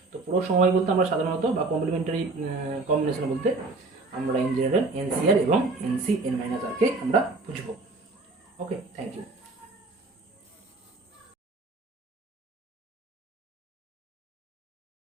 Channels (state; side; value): quieter; left; 3.5 dB